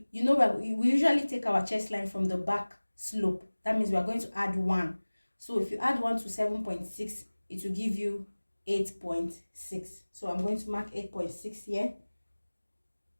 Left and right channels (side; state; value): both; inverted; correlation -1.00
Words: you know we usually take our chest line from the back slope. That means we are going to add 1. So if you add 1 to 7.6, it will give you 8.6. So I'm going to mark 8.6 here.